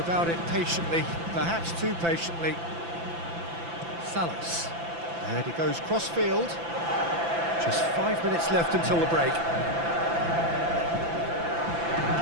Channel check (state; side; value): late; left; 5.9 ms